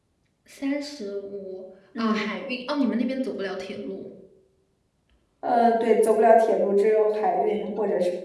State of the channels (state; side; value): identical; both; correlation 1.00